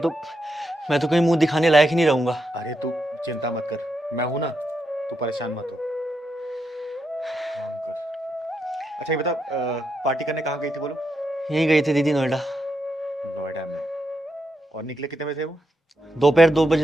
मैं तो कहीं मुंह दिखाने लायक ही नहीं रहूंगा। अरे तू चिंता मत कर, मैं हूं ना, तू परेशान मत हो। काम कर। अच्छा ये बता, पार्टी करने कहाँ गई थी बोलो? यहीं गए थे दीदी, नोएडा। नोएडा में? और निकले कितने बजे थे वो? दोपहर 2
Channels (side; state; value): both; normal; correlation 0.83